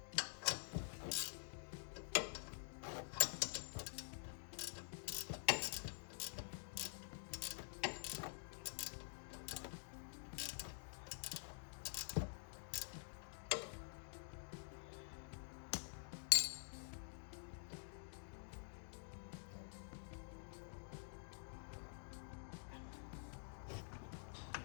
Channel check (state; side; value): silent; right; digital silence